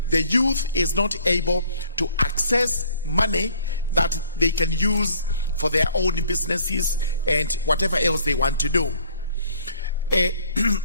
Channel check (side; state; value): both; inverted; correlation -0.57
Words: the youth is not able to access money that they can use for their own businesses and whatever else they want to do.